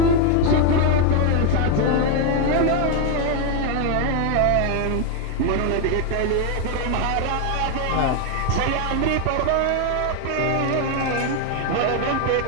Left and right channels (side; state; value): both; different; correlation 0.01